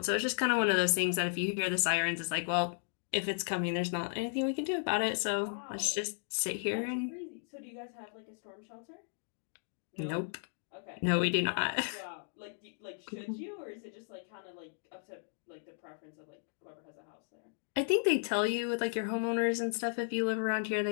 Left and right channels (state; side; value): silent; right; digital silence